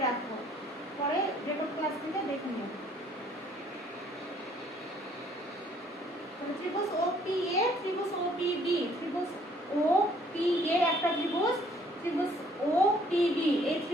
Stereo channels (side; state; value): both; normal; correlation 0.61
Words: রাখো, পরে রেকর্ড ক্লাস থেকে দেখে নিও। ত্রিভুজ OPA, ত্রিভুজ OPB, ত্রিভুজ OPA একটা ত্রিভুজ, ত্রিভুজ OPB এই